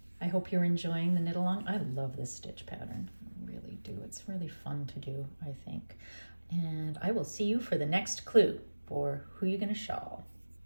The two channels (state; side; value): inverted; both; correlation -1.00